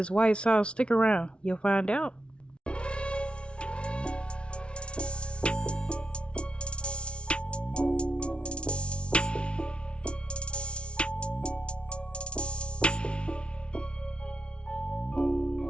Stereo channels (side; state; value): right; late; 0.059 ms